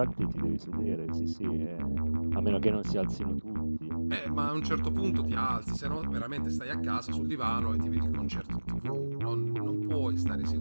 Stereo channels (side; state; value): both; inverted; correlation -1.00